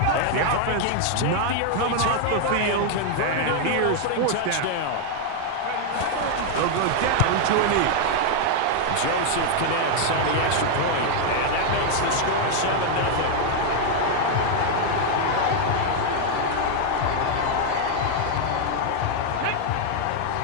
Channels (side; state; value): both; different; correlation 0.00